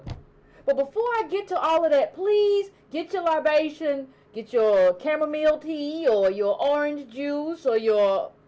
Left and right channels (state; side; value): identical; both; correlation 1.00